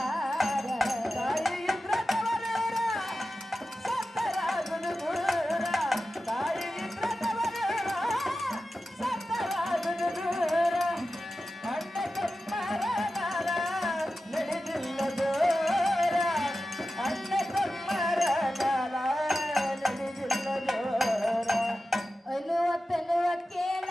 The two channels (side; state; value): both; normal; correlation 0.93